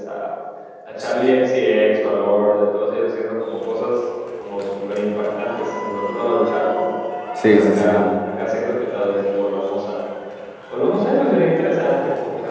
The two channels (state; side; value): identical; both; correlation 1.00